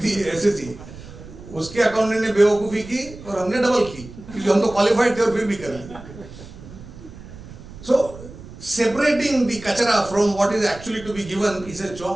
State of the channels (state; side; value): noise; right; rumble, 16 dB below the sound